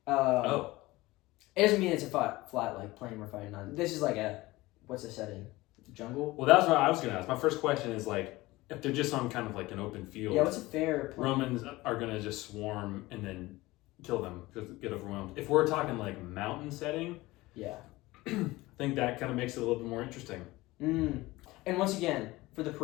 it doesn't mean it's a flat like plane we're fighting on. This is like what's the setting? Jungle. Well, that's what I was gonna ask. My first question is like, if they're just on kind of like an open field. Yeah, what's a fair plane? Romans are gonna just swarm and then kill them, just get overwhelmed. If we're talking like mountain setting, Yeah. I think that kind of makes it a little bit more interesting. And once again, for the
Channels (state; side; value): quieter; right; 19.7 dB